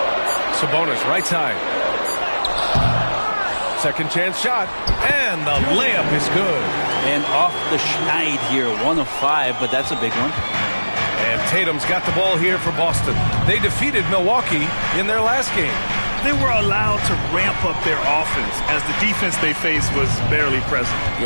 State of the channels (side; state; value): both; inverted; correlation -1.00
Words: Sabonis right side. Second chance shot. And the layup is good. And off the schneid here. 1 of 5, but that's a big one. And Tatum's got the ball here for Boston. They defeated Milwaukee in their last game. They were allowed to ramp up their offense as the defense they faced was barely present.